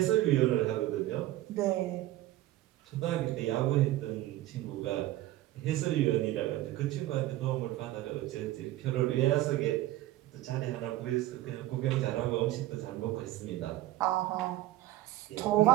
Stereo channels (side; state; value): left; quieter; 15.4 dB